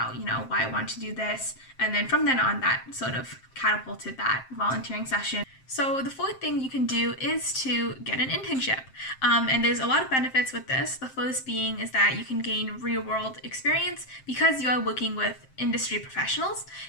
why I wanted to do this. And then from then on, that sort of catapulted that volunteering session. So the fourth thing you can do is to get an internship. And there's a lot of benefits with this. The first being is that you can gain real-world experience because you are working with industry professionals.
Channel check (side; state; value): right; late; 7.6 ms